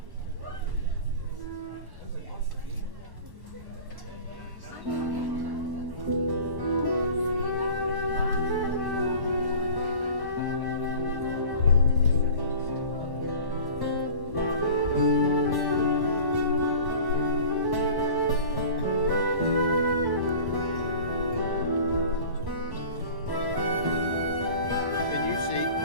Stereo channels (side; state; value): left; late; 1.1 ms